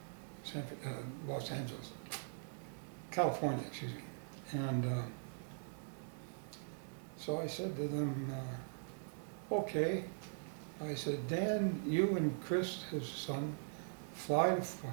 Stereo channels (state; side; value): silent; left; digital silence